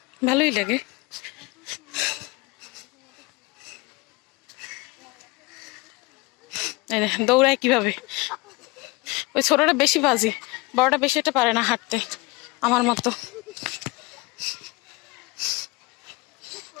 ভালোই লাগে। দৌড়ায় কিভাবে, ওই ছোটটা বেশি বাজি, বড়টা বেশি এটা পারে না হাঁটতে আমার মতো।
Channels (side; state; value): right; quieter; 24.9 dB